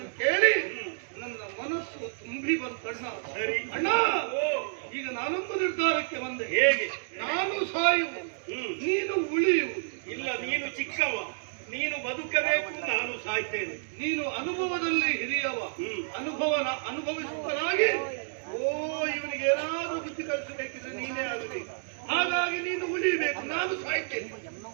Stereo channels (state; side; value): silent; left; digital silence